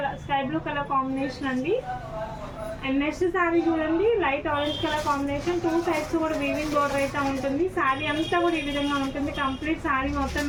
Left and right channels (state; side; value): identical; both; correlation 1.00